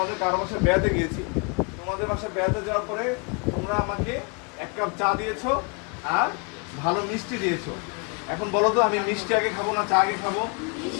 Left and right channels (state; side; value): quieter; right; 34.3 dB